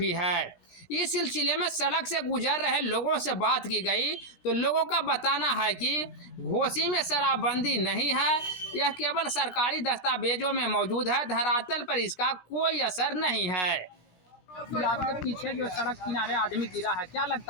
है। इस सिलसिले में सड़क से गुजर रहे लोगों से बात की गई तो लोगों का बताना है कि घोसी में शराबबंदी नहीं है, यह केवल सरकारी दस्तावेजों में मौजूद है, धरातल पर इसका कोई असर नहीं है। आपके पीछे जो सड़क किनारे आदमी गिरा है, क्या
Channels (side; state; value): right; late; 16 ms